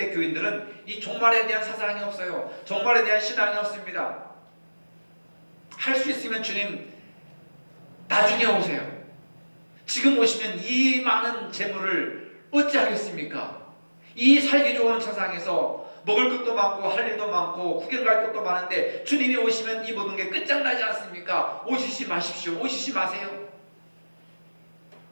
이 종말에 대한 사상이 없어요. 종말에 대한 신앙이 없습니다. 할 수 있으면 주님 나중에 오세요. 지금 오시면 이 많은 재물을 어찌하겠습니까? 이 살기 좋은 세상에서 먹을 것도 많고 할 일도 많고 구경 갈 것도 많은데 주님이 오시면 이 모든 게 끝장나지 않습니까? 오시지 마십시오. 오시지 마세요.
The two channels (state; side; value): inverted; both; correlation -1.00